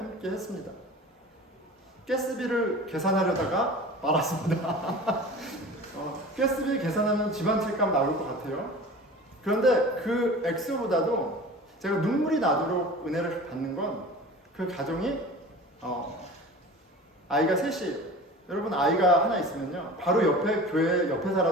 했습니다. 가스비를 계산하려다가 말았습니다. 가스비 계산하면 집 한 채 값 나올 것 같아요. 그런데 그 액수보다도 제가 눈물이 나도록 은혜를 받는 건 그 가정이 아이가 셋이, 여러분 아이가 하나 있으면요 바로 옆에 교회 옆에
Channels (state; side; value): normal; both; correlation 0.38